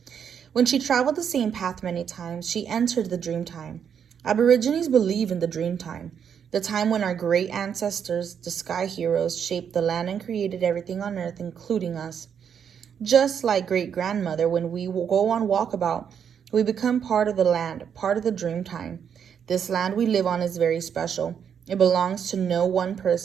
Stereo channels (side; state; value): left; quieter; 7.8 dB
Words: When she traveled the same path many times, she entered the dream time. Aborigines believe in the dream time, the time when our great ancestors, the sky heroes, shaped the land and created everything on earth, including us. Just like great-grandmother, when we go on walkabout, we become part of the land, part of the dream time. This land we live on is very special. It belongs to no one